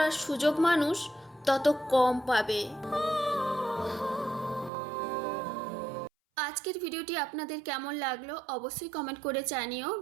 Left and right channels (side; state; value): left; drops out; at 4.7 s